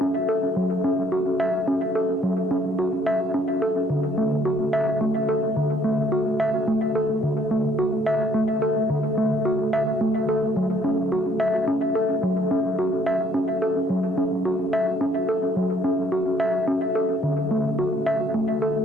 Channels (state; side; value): normal; both; correlation 0.64